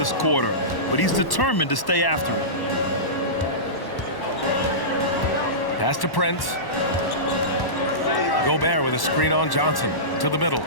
quarter, but he's determined to stay after it. Pass to Prince. Gobert with a screen on Johnson to the middle.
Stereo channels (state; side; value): late; right; 1.1 ms